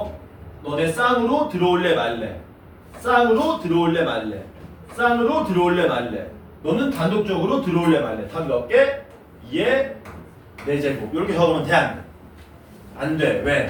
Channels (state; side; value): identical; both; correlation 1.00